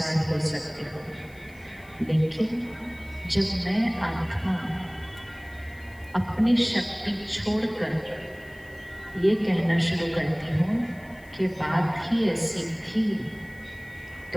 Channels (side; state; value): left; noise; hiss, 27 dB below the sound